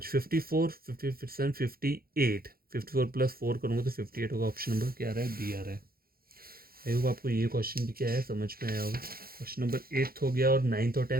54, 57, 58, 54 प्लस 4 करूँगा तो 58 होगा। ऑप्शन नंबर क्या आ रहा है? बी आ रहा है। आई होप आपको ये क्वेश्चन भी क्या है समझ में आया होगा। क्वेश्चन नंबर 8 हो गया और 9th और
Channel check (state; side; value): late; left; 0.43 ms